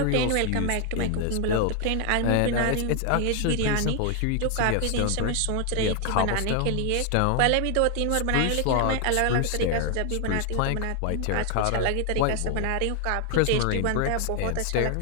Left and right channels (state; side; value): different; both; correlation 0.00